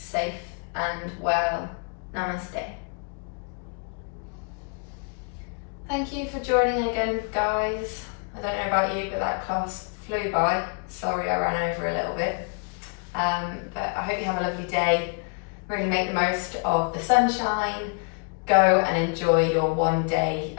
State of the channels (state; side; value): quieter; right; 39.1 dB